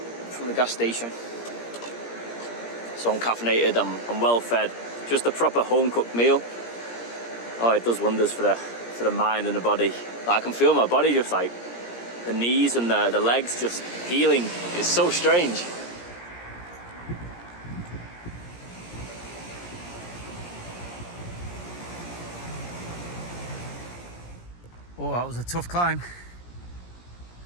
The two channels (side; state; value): right; late; 17 ms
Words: from the gas station. So I'm caffeinated, I'm well fed. Just a proper home cooked meal. Oh, it does wonders for the mind and the body. Like, I can feel my body just like the knees and the legs just healing. It's so strange. Oh, that was a tough climb.